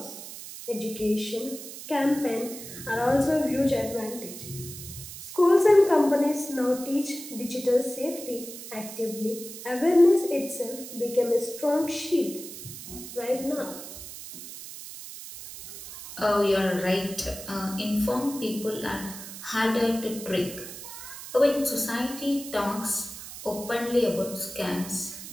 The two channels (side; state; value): right; noise; hiss, 12 dB below the sound